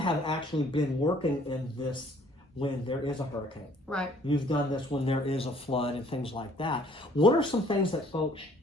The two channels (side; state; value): both; normal; correlation 0.58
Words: actually been working in this when there is a hurricane. Right. You've done this when there is a flood and things like that. What are some things that folks